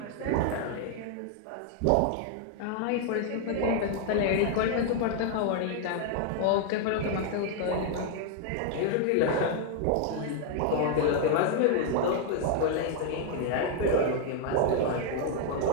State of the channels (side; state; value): both; different; correlation 0.00